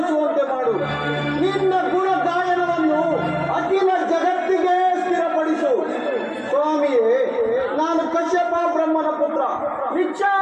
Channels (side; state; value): both; identical; correlation 1.00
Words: ಮಾಡು. ನಿನ್ನ ಗುಣ ಗಾಯನವನ್ನು ಅಖಿಲ ಜಗತ್ತಿಗೆ ಸ್ಥಿರಪಡಿಸು. ಸ್ವಾಮಿಯೇ, ನಾನು ಕಶ್ಯಪ ಬ್ರಹ್ಮನ ಪುತ್ರ,